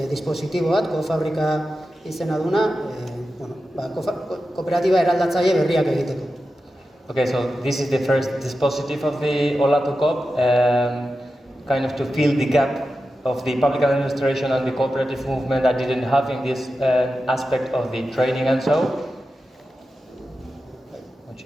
dispositibo bat, Fabrika izena duna, kooperatiba eraldatzaile berriak egiteko. Okay, so this is the first dispositive of the OlatuKoop, kind of to fill the gap of the public administration and the cooperative movement that didn't have in this aspect of the training and so.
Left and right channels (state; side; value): normal; both; correlation 0.92